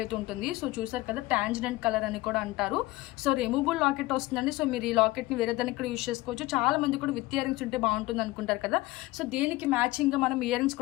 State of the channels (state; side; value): quieter; right; 19.4 dB